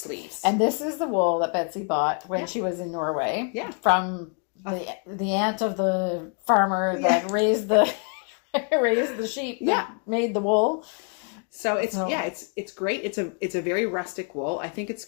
And this is the wool that Betsy bought when she was in Norway. From the aunt of the farmer that raised the sheep that made the wool. So it's great. It's a very rustic wool. I think it's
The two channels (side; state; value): right; quieter; 39.9 dB